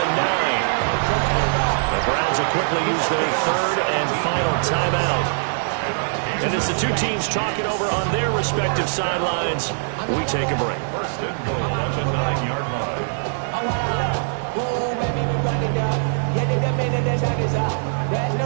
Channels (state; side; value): silent; left; 64 dB below the other